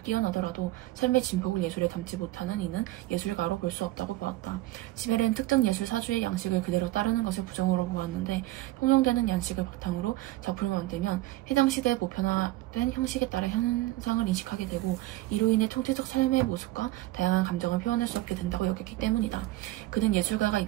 삶의 진폭을 예술에 담지 못하는 이는 예술가로 볼 수 없다고 보았다. 지멜은 특정 예술 사주의 양식을 그대로 따르는 것을 부정으로 보았는데 통용되는 양식을 바탕으로 작품을 만들면 해당 시대에 보편화된 형식에 따라 현상을 인식하게 되고 이로 인해 총체적 삶의 모습과 다양한 감정을 표현할 수 없게 된다고 여겼기 때문이다. 그는 예술가가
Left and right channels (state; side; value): quieter; left; 17.1 dB